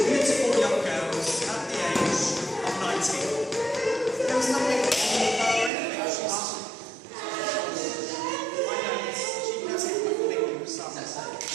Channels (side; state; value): left; drops out; at 5.7 s